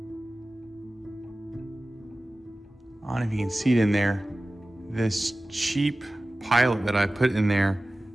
I don't know if you can see it in there. This cheap pilot that I put in there,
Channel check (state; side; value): normal; both; correlation 0.96